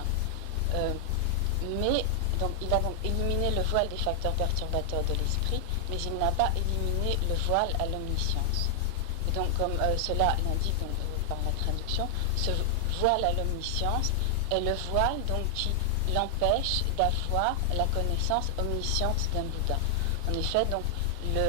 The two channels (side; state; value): both; different; correlation -0.01